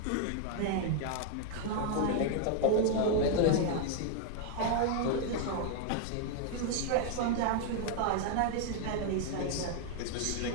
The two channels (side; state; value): both; different; correlation 0.00